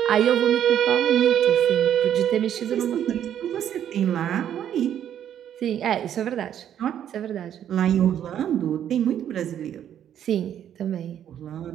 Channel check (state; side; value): quieter; left; 10.1 dB